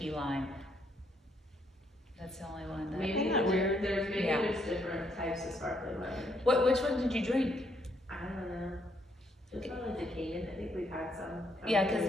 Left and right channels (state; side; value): normal; both; correlation 0.72